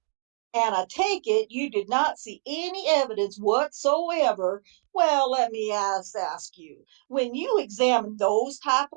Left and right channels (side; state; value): left; silent; digital silence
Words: And I take it you did not see any evidence whatsoever. Well, let me ask you, when you examine those type